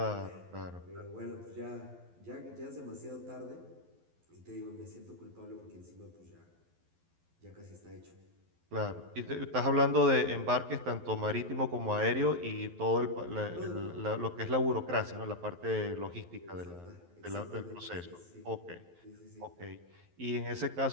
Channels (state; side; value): late; left; 11 ms